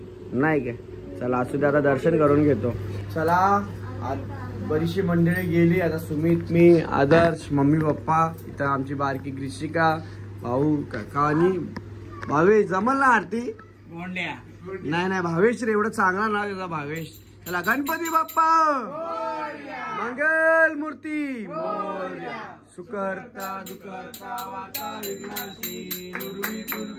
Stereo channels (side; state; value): both; identical; correlation 1.00